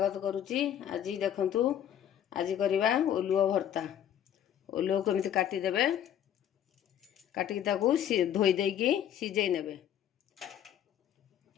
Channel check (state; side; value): quieter; right; 10.2 dB